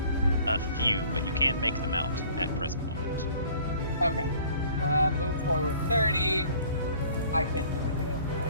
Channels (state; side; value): inverted; both; correlation -0.53